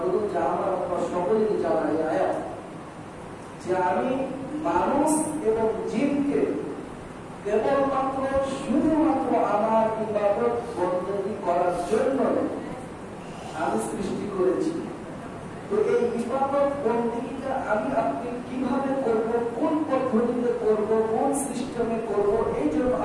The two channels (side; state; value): both; identical; correlation 1.00